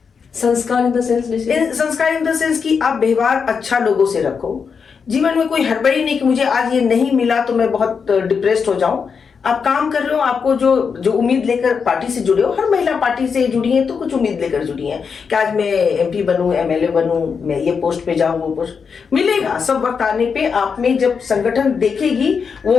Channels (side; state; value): right; quieter; 5.9 dB